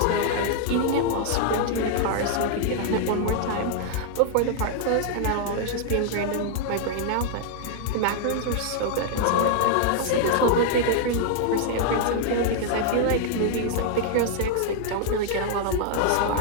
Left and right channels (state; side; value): different; both; correlation 0.00